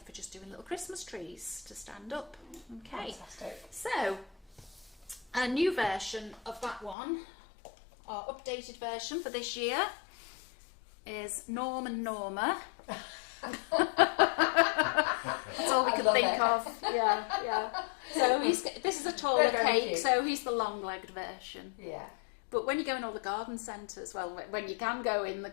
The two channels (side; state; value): right; drops out; at 7.0 s